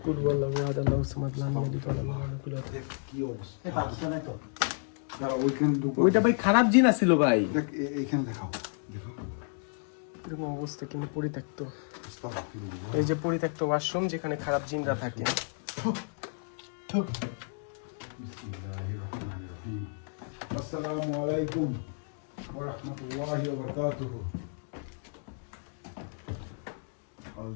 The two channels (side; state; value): right; silent; 57 dB below the other